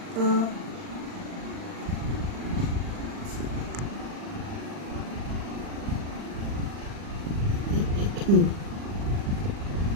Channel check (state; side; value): late; left; 39 ms